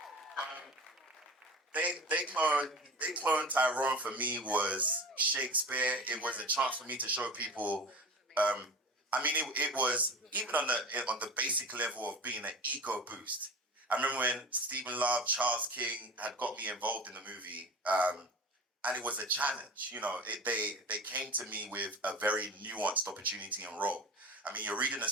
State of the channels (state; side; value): normal; both; correlation 0.34